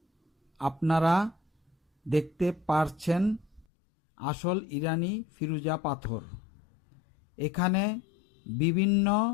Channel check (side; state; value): right; drops out; at 3.7 s